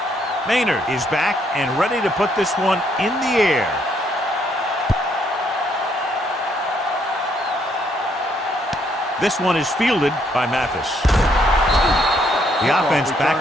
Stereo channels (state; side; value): normal; both; correlation 0.71